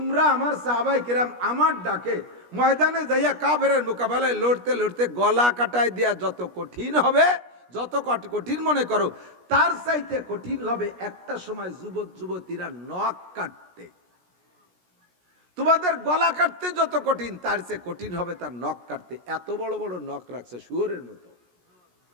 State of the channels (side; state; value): left; late; 17 ms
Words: আমার সাহাবাই কিরাম আমার ডাকে ময়দানে যাইয়া কাফেরের মোকাবেলায় লড়তে লড়তে গলা কাটায় দেয়া যত কঠিন হবে, যত কঠিন মনে করো, তার চাইতে কঠিন হবে একটা সময় যুবক যুবতীরা নখ কাটতে। তোমাদের গলা কাটতে যত কঠিন, তার চেয়ে কঠিন হবে তার নখ কাটতে। এত বড় বড় নখ রাখছে শুয়োরের মতো।